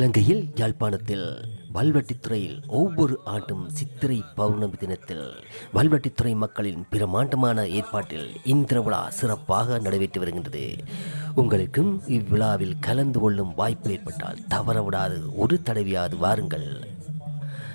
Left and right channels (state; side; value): inverted; both; correlation -1.00